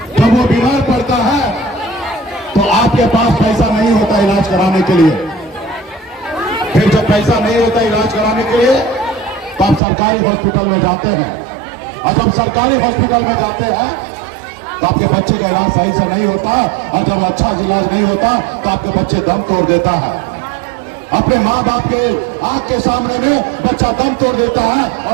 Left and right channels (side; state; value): left; drops out; at 9.8 s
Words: जब वो बीमार पड़ता है तो आपके पास पैसा नहीं होता इलाज कराने के लिए। फिर जब पैसा नहीं होता इलाज कराने के लिए तो आप सरकारी हॉस्पिटल में जाते हैं। और जब सरकारी हॉस्पिटल में जाते हैं तो आपके बच्चे का इलाज सही से नहीं होता, और जब अच्छा इलाज नहीं होता तो आपके बच्चे दम तोड़ देता है। अपने माँ बाप के आंख के सामने में बच्चा दम तोड़ देता है